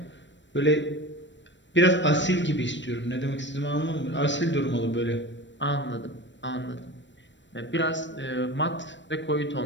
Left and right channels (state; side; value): late; right; 0.53 ms